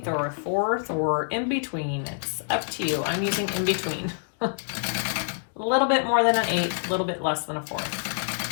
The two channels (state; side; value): silent; right; 61 dB below the other